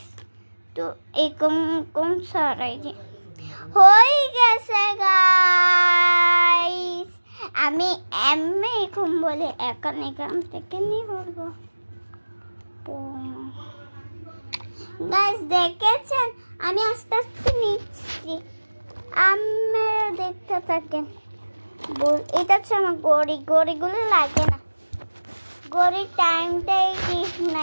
তো এরকম সরাই দি, হয়ে গেছে গাইস। আমি এখন বলে এখান থেকে নিয়ে বলবো। গাইস দেখেছেন, আমি আস্তে আস্তে নিচ্ছি, আপনারা দেখতে থাকেন। এটা হচ্ছে আমার গড়িগুলো লাগে না, গড়ির টাইমটাই ঠিক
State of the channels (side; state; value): both; inverted; correlation -1.00